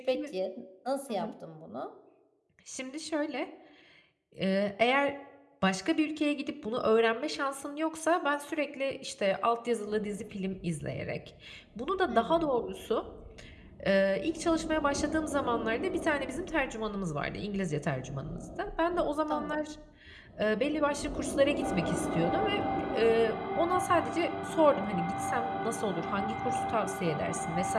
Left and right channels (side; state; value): both; identical; correlation 1.00